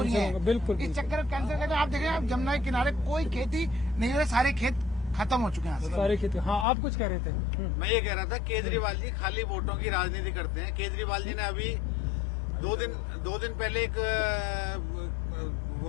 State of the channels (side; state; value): right; drops out; at 6.7 s